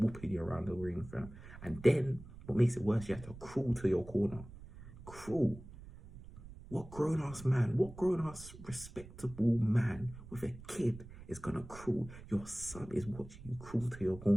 you around the ring, fam. And then, what makes it worse, you have to crawl to your corner. Crawl. What grown-ass respectable man with a kid is gonna crawl? Your son is watching you crawl to your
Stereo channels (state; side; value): noise; right; rumble, 16 dB below the sound